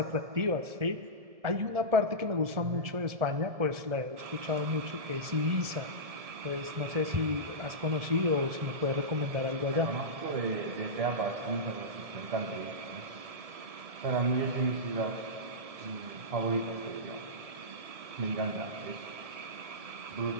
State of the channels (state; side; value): late; left; 1.7 ms